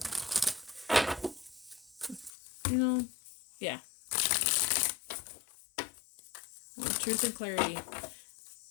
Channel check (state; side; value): drops out; right; at 2.3 s